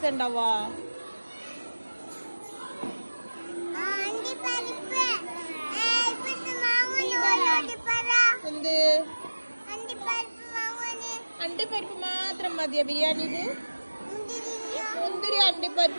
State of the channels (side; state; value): both; inverted; correlation -1.00